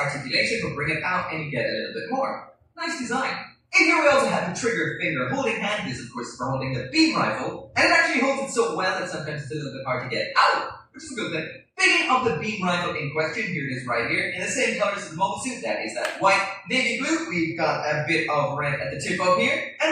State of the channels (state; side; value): identical; both; correlation 1.00